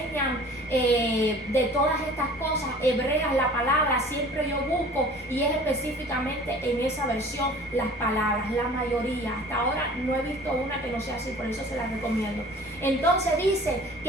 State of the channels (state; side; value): normal; both; correlation 0.46